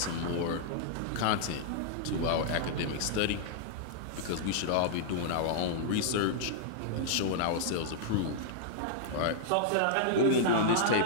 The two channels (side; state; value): both; different; correlation -0.02